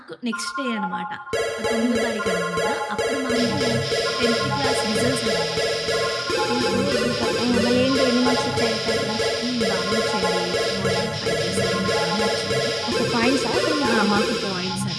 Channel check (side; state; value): both; identical; correlation 1.00